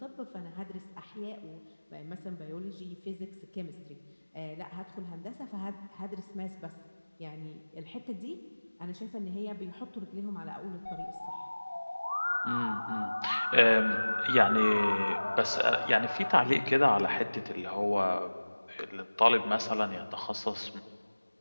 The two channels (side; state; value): both; inverted; correlation -1.00